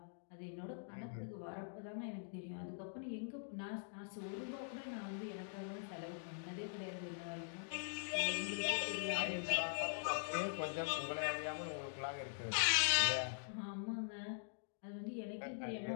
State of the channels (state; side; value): silent; right; digital silence